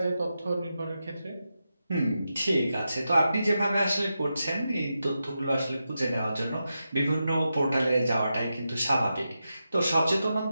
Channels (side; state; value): both; inverted; correlation -0.89